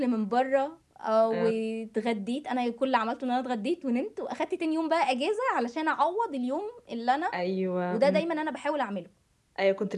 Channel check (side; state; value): both; identical; correlation 1.00